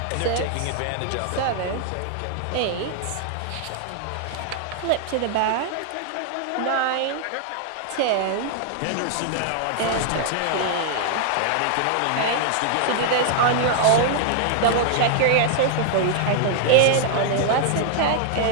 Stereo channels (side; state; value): both; different; correlation -0.01